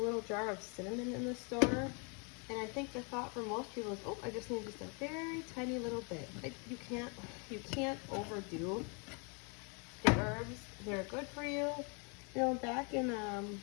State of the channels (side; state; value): right; quieter; 35.4 dB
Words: little jar of cinnamon in the store. And I think the thought for most people is, oh, I just need just a very tiny little bit. You can't overdo the herbs. They're good for you. You know, back in